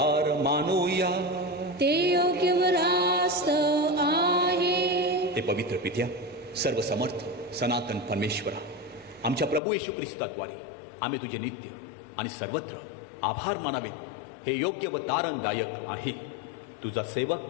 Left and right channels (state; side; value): drops out; right; at 9.6 s